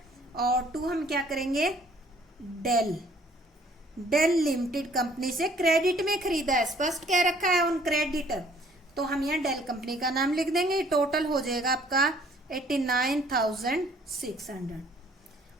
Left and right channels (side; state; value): both; normal; correlation 0.59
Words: और 2 हम क्या करेंगे डेल लिमिटेड कंपनी से क्रेडिट में खरीदा है, स्पष्ट कह रखा है ऑन क्रेडिट, तो हम यहाँ डेल कंपनी का नाम लिख देंगे। टोटल हो जाएगा आपका 89,600।